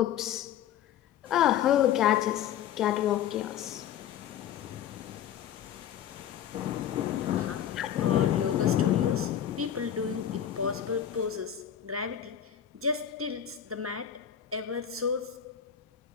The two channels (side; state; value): right; quieter; 9.7 dB